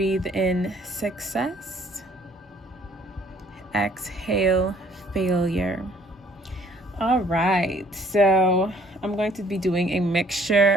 in success. Exhale failure. All right, so I'm going to be doing a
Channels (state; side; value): normal; both; correlation 0.60